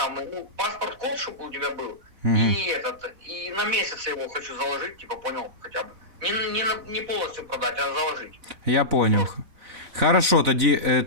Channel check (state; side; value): late; left; 4.1 ms